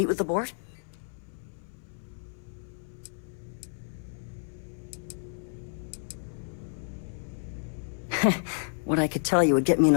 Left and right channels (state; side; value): silent; right; 57 dB below the other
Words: with the board? What I could tell you would get me in